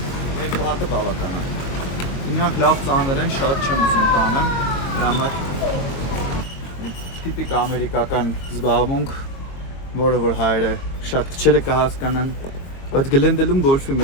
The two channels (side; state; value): right; late; 22 ms